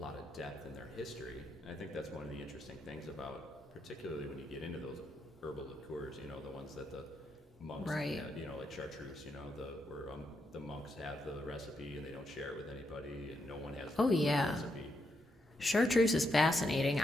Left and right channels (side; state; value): both; normal; correlation 0.81